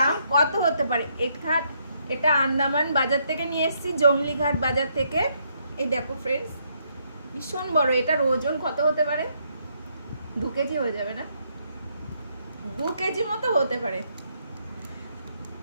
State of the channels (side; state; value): both; inverted; correlation -0.74